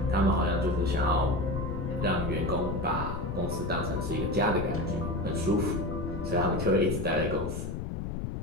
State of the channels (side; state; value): left; noise; rumble, 4 dB below the sound